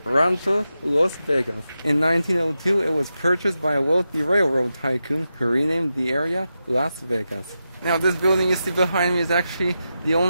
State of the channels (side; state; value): both; inverted; correlation -0.89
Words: Rancho Las Vegas. In 1902, it was purchased by a wealthy railroad tycoon who renamed the area Las Vegas. Now, this building you see behind me is actually the